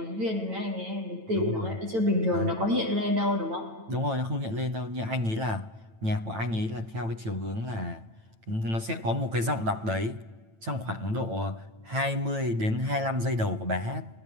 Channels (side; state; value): left; late; 9.0 ms